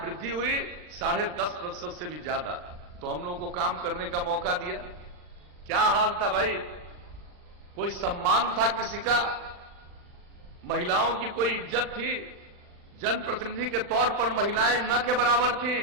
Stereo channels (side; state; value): left; late; 40 ms